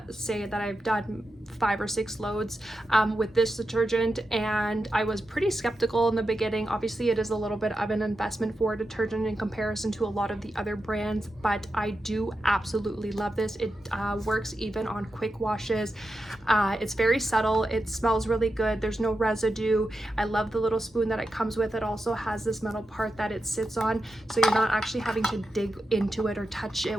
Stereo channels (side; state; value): both; normal; correlation 0.89